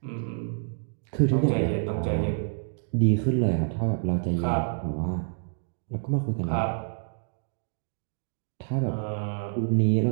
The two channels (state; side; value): silent; left; digital silence